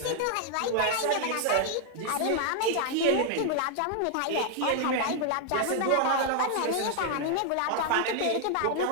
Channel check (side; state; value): both; different; correlation 0.00